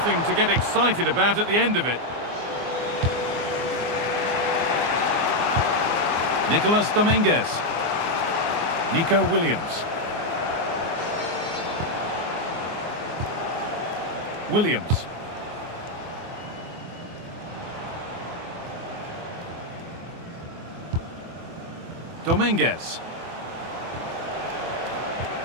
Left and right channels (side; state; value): left; late; 24 ms